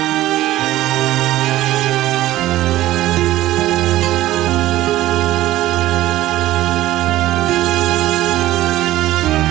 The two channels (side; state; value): left; quieter; 15.2 dB